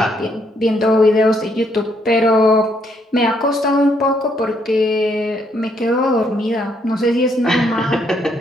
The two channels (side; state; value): both; normal; correlation 0.72